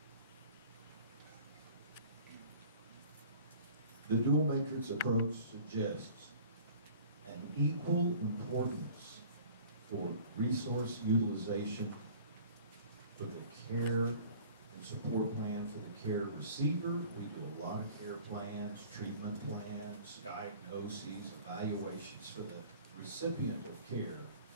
The dual matrix approach suggests an equal importance for resource utilization for the care and support plan for the care receiver. We do a lot of care plans, treatment plans, diagnoses, evaluations for the recipient of care,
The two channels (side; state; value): both; inverted; correlation -0.47